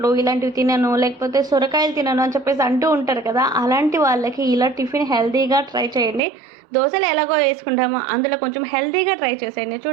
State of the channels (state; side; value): drops out; left; at 6.2 s